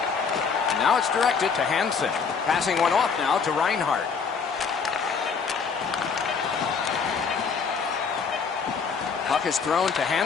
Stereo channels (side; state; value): right; quieter; 5.7 dB